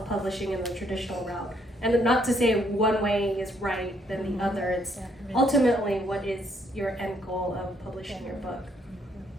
and the traditional route. And not to say one way is right than the other. It's ultimately what is your end goal of publishing your book.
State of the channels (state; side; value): normal; both; correlation 0.70